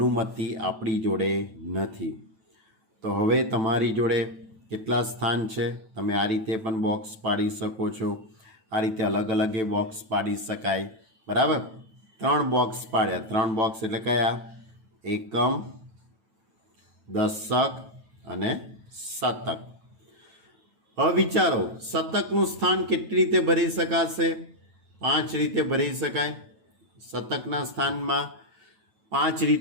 આપણી જોડે નથી. તો હવે તમારી જોડે કેટલા સ્થાન છે? તમે આ રીતે પણ બોક્સ પાડી શકો છો. આ રીતે અલગ અલગ એ બોક્સ પાડી શકાય. બરાબર. 3 બોક્સ પાડ્યા. 3 બોક્સ એટલે કયા? એકમ, દશક અને શતક. હવે વિચારો, શતકનું સ્થાન કેટલી રીતે ભરી શકાશે? 5 રીતે ભરી શકાય. શતકના સ્થાનમાં 5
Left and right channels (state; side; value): late; left; 9.1 ms